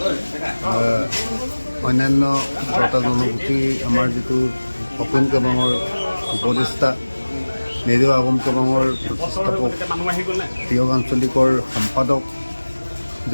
অন্যান্য বটা জনগোষ্ঠী আমাৰ যিটো অপন কবাঙৰ উপদেষ্টা নেজেও আগম কবাঙৰ প্ৰতিষ্ঠাপক তিয়ক আঞ্চলিকৰ সম্পাদক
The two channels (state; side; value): inverted; both; correlation -1.00